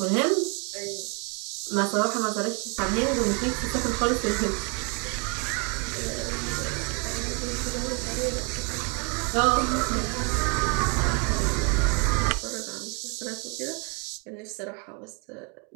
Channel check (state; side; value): quieter; left; 34.4 dB